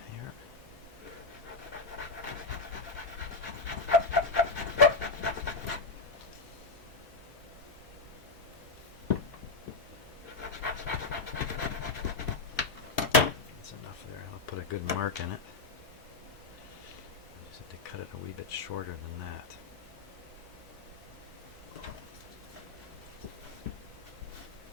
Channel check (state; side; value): quieter; right; 3.7 dB